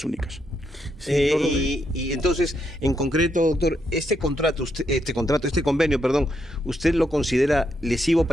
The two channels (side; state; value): both; normal; correlation 0.79